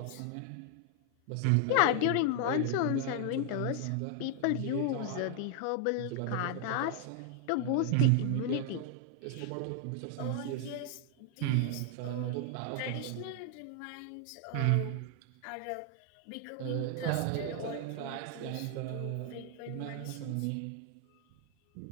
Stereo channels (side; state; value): both; different; correlation 0.00